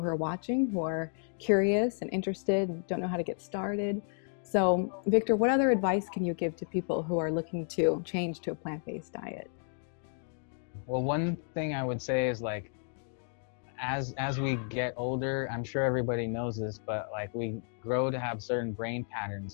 who are watching, who are curious and interested and don't know how to get started. So Victor, what other advice can you give to people who are looking to change to a plant-based diet? Well, one thing I would say is like, as we get older, I'm sure everybody knows this, but like we grow to have certain brain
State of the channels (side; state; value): right; silent; 56 dB below the other